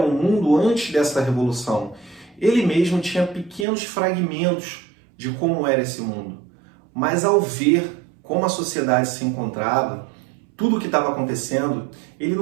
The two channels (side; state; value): left; drops out; at 3.7 s